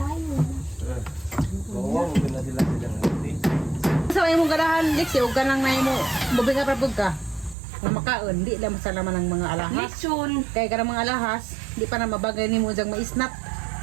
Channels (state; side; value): drops out; left; at 7.6 s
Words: Oo, hindi na sila silang hati. Sa imong ganahan, Lexi, huwag ka lang na mo. Bubinga pa pagka. Kung makaon, di lang masalaman ng mga alahas. Lechon. Kaya ka ng mga alahas, di pa na mabagay ni mo diyang maisnap.